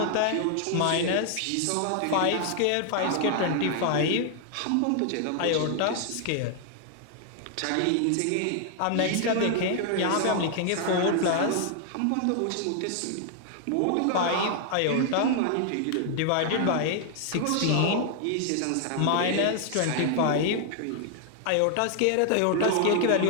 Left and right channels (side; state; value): both; different; correlation 0.00